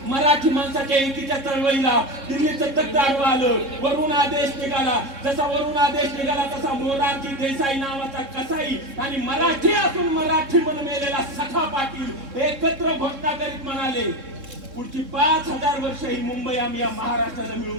मराठी माणसाच्या एकीच्या चळवळीला दिल्लीचं तख्त आडवं आलं, वरून आदेश निघाला. जसा वरून आदेश निघाला तसा मोरारजी देसाई नावाचा कसाई आणि मराठी असून मराठी म्हणून मेलेला सखा पाटील एकत्र घोषणा करीत म्हणाले, पुढची 5000 वर्ष ही मुंबई आम्ही या महाराष्ट्राला मिळून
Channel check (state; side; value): late; left; 3.7 ms